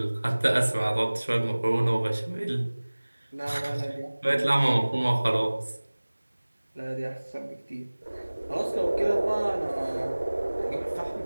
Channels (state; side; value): inverted; both; correlation -1.00